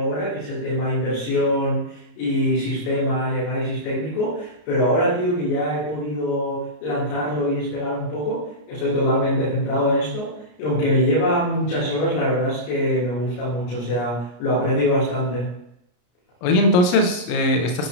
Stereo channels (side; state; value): right; late; 33 ms